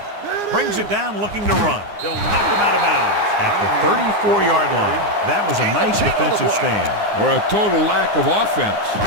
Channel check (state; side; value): late; left; 9.7 ms